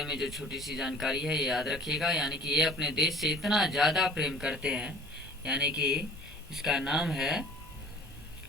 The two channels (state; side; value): normal; both; correlation 0.48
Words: में जो छोटी सी जानकारी है ये याद रखिएगा। यानी कि ये अपने देश से इतना ज़्यादा प्रेम करते हैं, यानी कि इसका नाम है